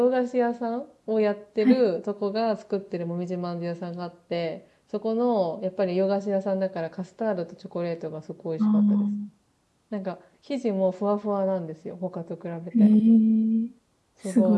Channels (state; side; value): identical; both; correlation 1.00